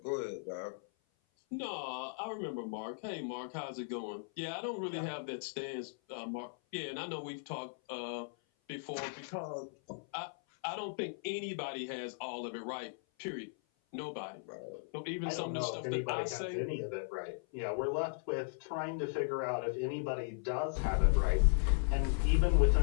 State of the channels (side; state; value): right; silent; 53 dB below the other